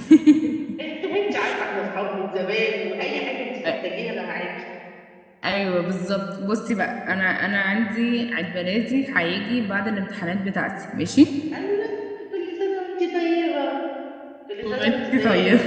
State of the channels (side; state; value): both; identical; correlation 1.00